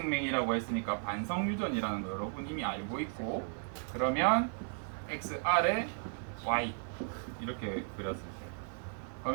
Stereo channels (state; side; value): silent; left; 54 dB below the other